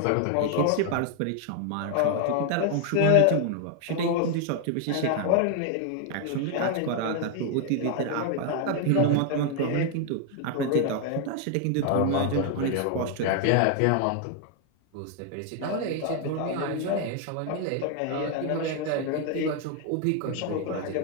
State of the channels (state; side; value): different; both; correlation 0.00